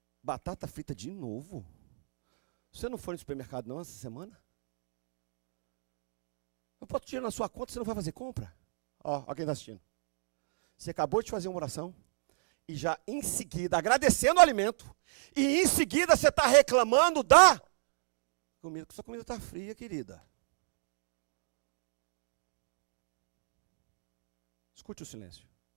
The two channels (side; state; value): left; silent; digital silence